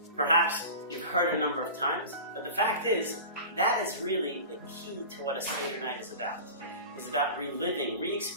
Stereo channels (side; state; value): both; inverted; correlation -0.34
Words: perhaps you've heard a number of times, but the fact is, that is really the key to what a Seder night is about. It's about reliving,